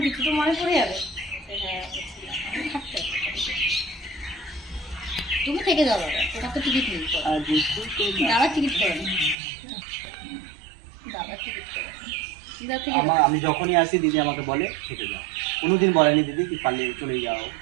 কিছু তো মনে পড়ে যাবে। হ্যাঁ থাকতে হবে। তুমি থেকে যাও দাদা, তোমার তো টিকিট নেই। দাদা টিকিট করে নি, দাদা টিকিট করে আমি যখনই আসি দিদি আমাকে বলে থেকে যাও, কোনোদিন বলেনি দিদি কি পারলে চলে যাও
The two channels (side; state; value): left; drops out; at 9.3 s